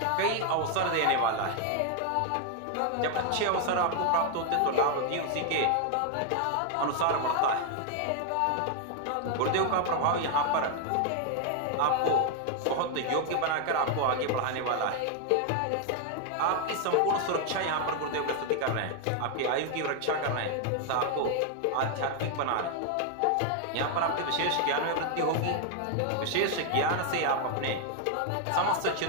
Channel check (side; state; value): both; different; correlation 0.00